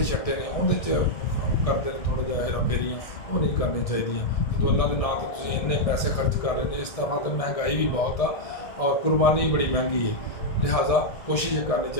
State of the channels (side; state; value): right; late; 1.7 ms